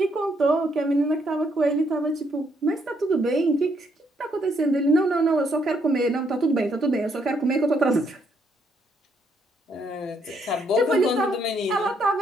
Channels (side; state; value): both; normal; correlation 0.73